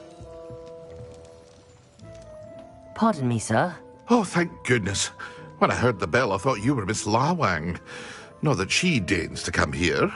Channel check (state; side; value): identical; both; correlation 1.00